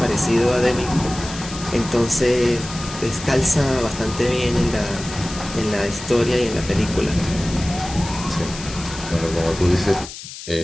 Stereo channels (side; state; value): left; noise; hiss, 12 dB below the sound